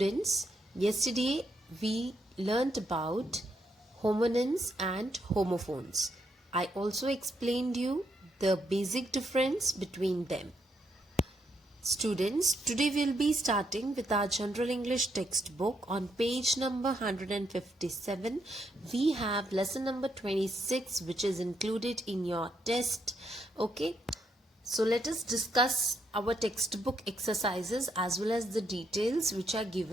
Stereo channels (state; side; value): normal; both; correlation 0.77